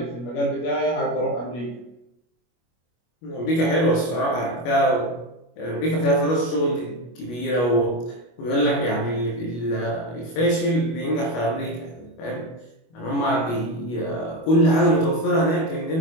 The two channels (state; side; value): late; right; 25 ms